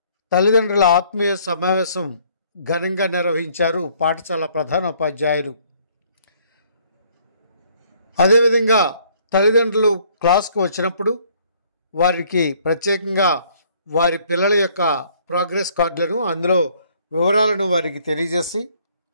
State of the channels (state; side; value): inverted; both; correlation -0.62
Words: తల్లిదండ్రుల ఆత్మీయ సమావేశం ఘనంగా నిర్వహించారు పాఠశాల ప్రధానోపాధ్యాయులు. అదేవిధంగా తల్లిదండ్రులు క్లాస్కు వచ్చినప్పుడు వారికి ప్రత్యేకంగా వారి పిల్లల యొక్క ప్రోగ్రెస్ కార్డులను, అందులో వివరాలను వారికి తెలియజేసి